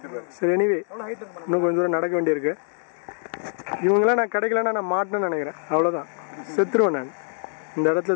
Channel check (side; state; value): right; silent; 62 dB below the other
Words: சரி, எனிவே இன்னும் கொஞ்சம் தூரம் நடக்க வேண்டியிருக்கு. இவங்களாம் நான் கிடைக்கலன்னா நான் மாட்டேன்னு நினைக்கிறேன். அவ்வளோதான், செத்துருவேன் நான். இந்த இடத்துல